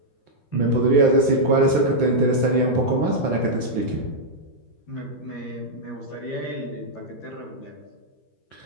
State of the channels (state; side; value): late; right; 12 ms